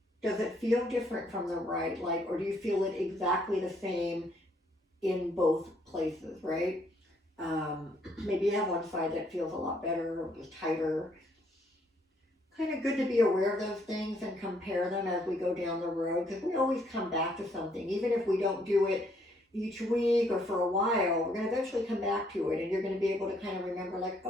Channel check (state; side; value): normal; both; correlation 0.69